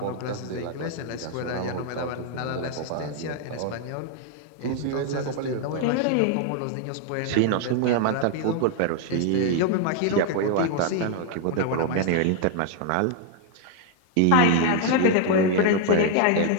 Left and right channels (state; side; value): different; both; correlation 0.00